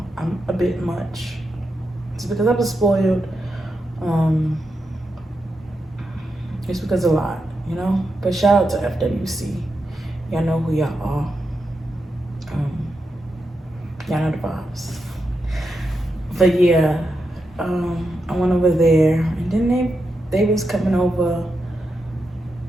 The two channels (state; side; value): normal; both; correlation 0.86